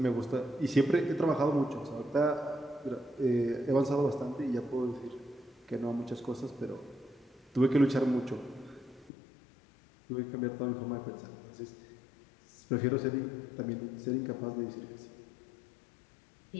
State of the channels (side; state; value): right; drops out; at 9.1 s